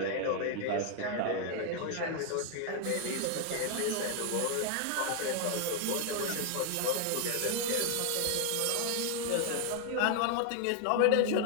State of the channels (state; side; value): different; both; correlation 0.00